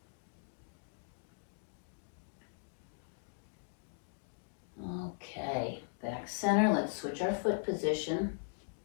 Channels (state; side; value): silent; right; digital silence